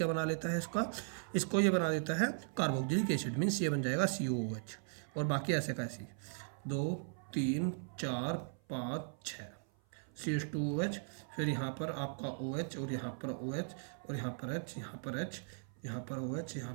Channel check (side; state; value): left; silent; 52 dB below the other